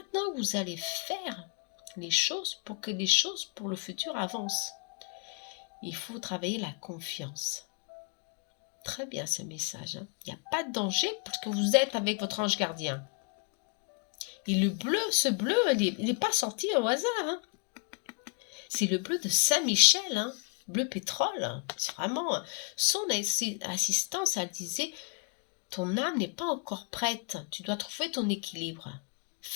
que vous allez faire les choses pour que les choses pour le futur avancent. Il faut travailler la confiance. Très bien ce message, hein. Il n'y a pas de danger parce que vous êtes avec votre ange gardien. Et le bleu, ce bleu, il n'est pas sorti au hasard, hein. C'est le bleu de Saint-Michel, hein. Bleu pétrole. C'est vraiment son assistance. Elle disait, ton âme n'est pas encore prête. Tu dois trouver ton équilibre.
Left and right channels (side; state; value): right; quieter; 37.0 dB